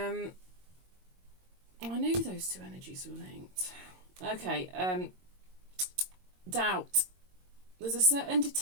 knew those 2 energies were linked. Okay, doubt. There's a certain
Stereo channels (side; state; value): left; late; 22 ms